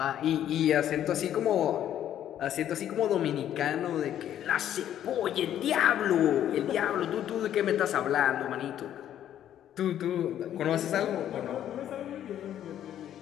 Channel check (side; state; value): right; quieter; 10.9 dB